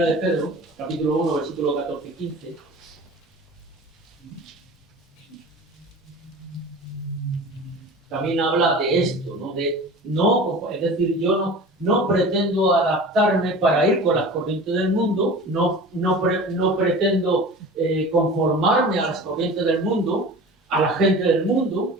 de Pedro, capítulo 1, versículo 14 y 15. También habla de esto, ¿no? Es decir, yo no pretendo adaptarme para ir con las corrientes del mundo, no pretendo conformarme a las corrientes del mundo, a la gente del mundo,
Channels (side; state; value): both; normal; correlation 0.38